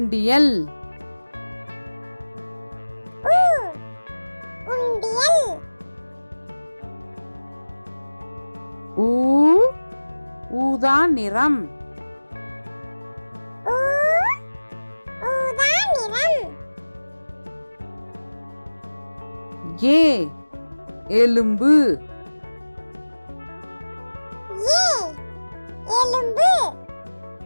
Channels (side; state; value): both; inverted; correlation -1.00